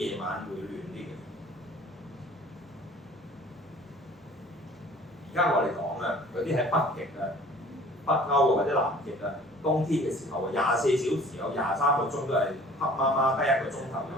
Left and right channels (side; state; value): both; normal; correlation 0.49